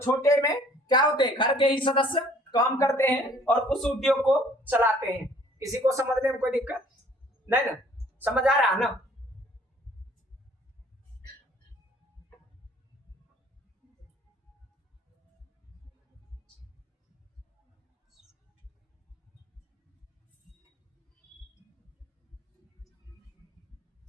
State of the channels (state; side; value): normal; both; correlation 0.56